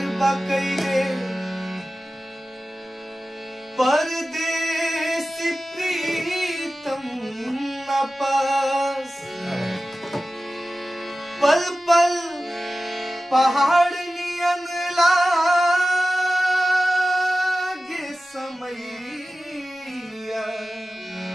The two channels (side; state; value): both; normal; correlation 0.95